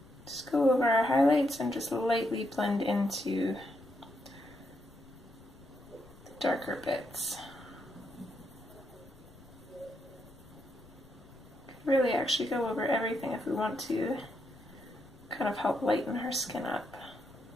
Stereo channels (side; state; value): left; noise; rumble, 23 dB below the sound